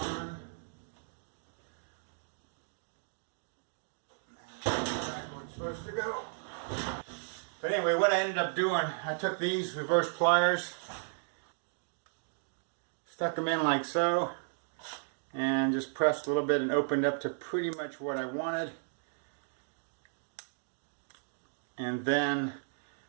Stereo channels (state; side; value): silent; left; digital silence